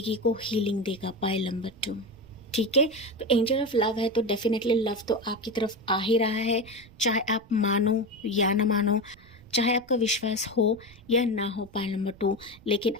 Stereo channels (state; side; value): noise; right; rumble, 24 dB below the sound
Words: को हीलिंग देगा पाइल नंबर 2, ठीक है। तो एंजल ऑफ लव है तो डेफिनेटली लव तो आपकी तरफ आ ही रहा है, चाहे आप मानो या ना मानो, चाहे आपका विश्वास हो या ना हो पाइल नंबर 2, लेकिन